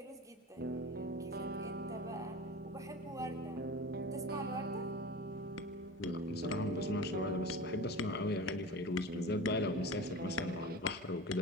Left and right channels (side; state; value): both; normal; correlation 0.33